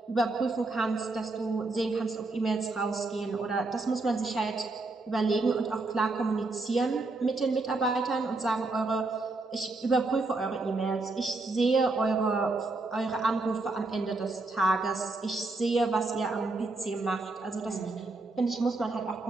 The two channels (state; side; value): quieter; left; 3.3 dB